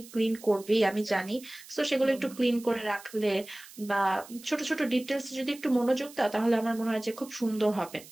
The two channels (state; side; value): noise; right; hiss, 19 dB below the sound